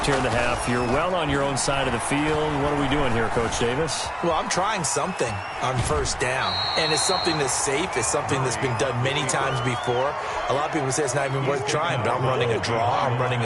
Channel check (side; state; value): both; identical; correlation 1.00